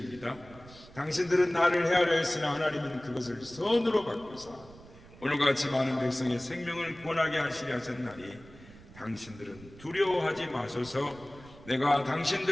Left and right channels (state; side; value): noise; right; rumble, 20 dB below the sound